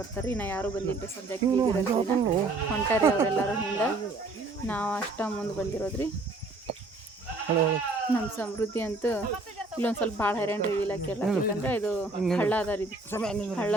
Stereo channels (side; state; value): left; quieter; 3.2 dB